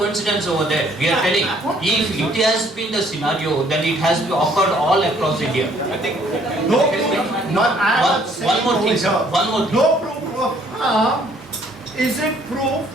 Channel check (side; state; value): both; normal; correlation 0.62